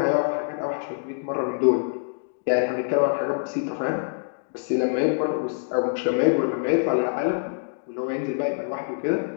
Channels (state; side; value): silent; right; digital silence